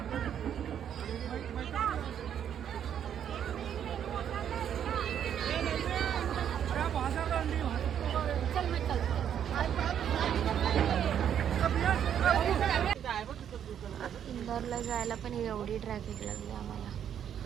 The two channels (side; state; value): left; quieter; 9.2 dB